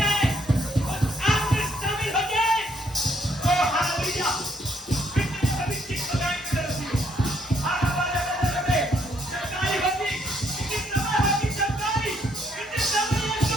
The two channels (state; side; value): normal; both; correlation 0.70